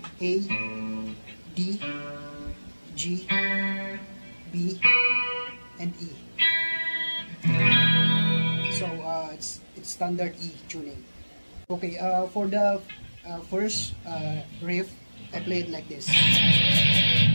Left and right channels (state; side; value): inverted; both; correlation -1.00